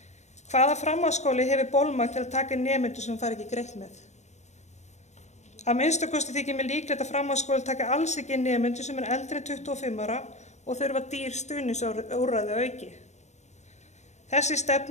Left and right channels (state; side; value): late; right; 0.33 ms